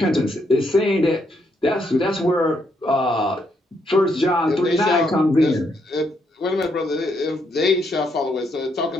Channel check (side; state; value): both; normal; correlation 0.76